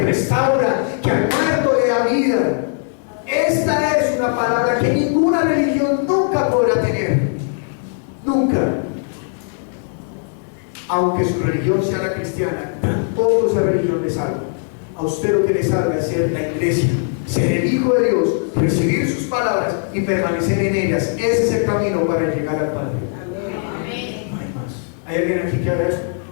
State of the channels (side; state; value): right; silent; 66 dB below the other